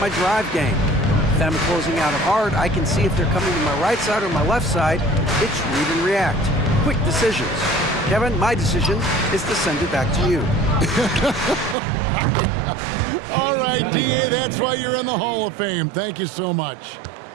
my drive game. If I'm closing out hard, I can see if they're coming to my right side or my left side. It's read and react. Quick decisions. Kevin, my decision is to send it back to you. All right, D.A., that's why you're in the Hall of Fame. Thank you so much.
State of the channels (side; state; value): left; drops out; at 11.8 s